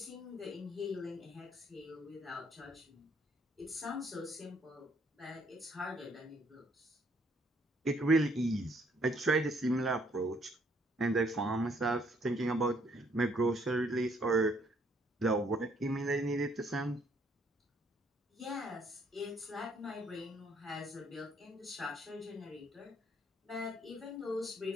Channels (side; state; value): both; normal; correlation 0.67